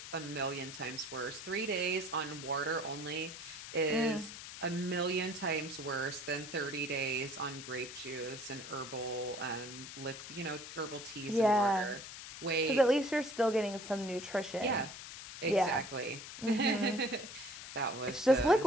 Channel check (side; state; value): left; noise; hiss, 11 dB below the sound